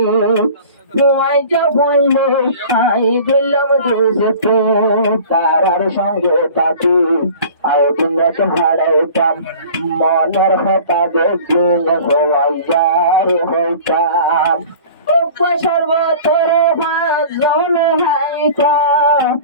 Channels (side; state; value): both; inverted; correlation -0.43